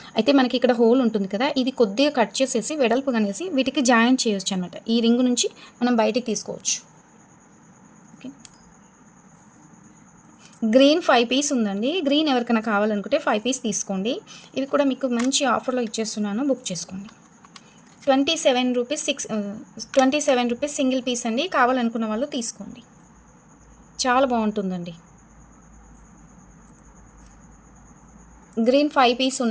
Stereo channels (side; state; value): both; identical; correlation 1.00